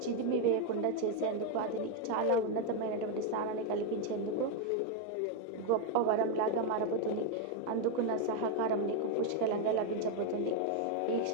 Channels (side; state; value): both; different; correlation 0.01